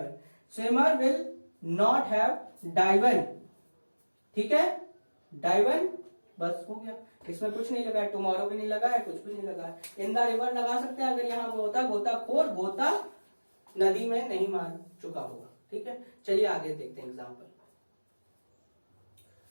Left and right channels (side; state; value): both; inverted; correlation -1.00